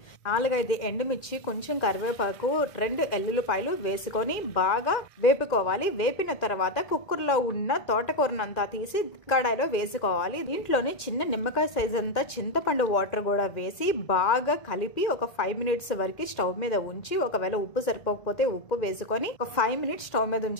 4-5 ఎండుమిర్చి, కొంచెం కరివేపాకు, 2 ఎల్లుల్లిపాయలు వేసుకొని బాగా వేపుకోవాలి. వేపిన తర్వాత కుక్కర్లో ఉన్న తోటకూరనంతా తీసి కడాయిలో వేసుకోవాలి. దీంట్లోనే చిన్న నిమ్మకాయ సైజ్ అంతా చింతపండు వాటర్ కూడా వేసి బాగా కలిపి ఒక 5 మినిట్స్ వరకు స్టవ్ మీద ఉంచి, ఒకవేళ ఉప్పు సరిపోకపోతే ఉప్పు వేసుకొని ఒక 5 మినిట్స్ స్టవ్ మీద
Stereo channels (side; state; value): right; late; 2.1 ms